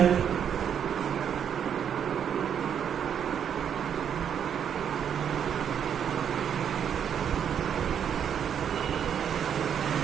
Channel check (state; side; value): quieter; left; 8.4 dB